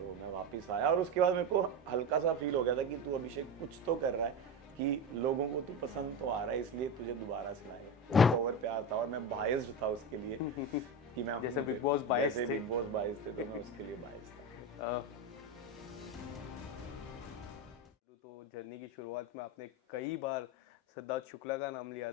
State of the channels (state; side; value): normal; both; correlation 0.20